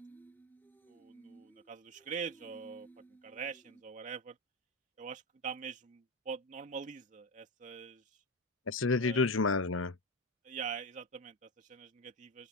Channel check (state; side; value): normal; both; correlation 0.14